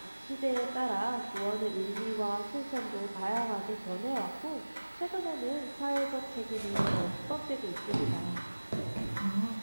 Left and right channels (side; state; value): both; inverted; correlation -1.00